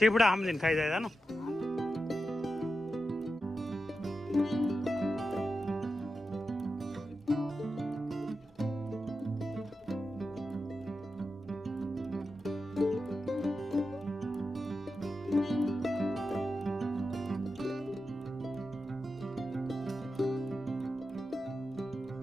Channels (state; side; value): normal; both; correlation 0.90